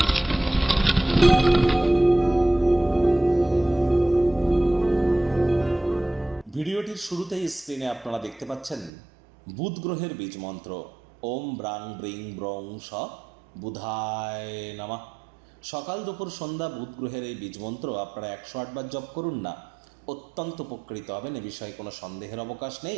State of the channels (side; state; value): left; drops out; at 8.9 s